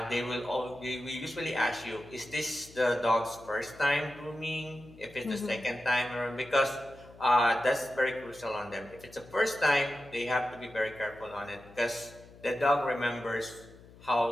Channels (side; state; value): left; noise; hum, 22 dB below the sound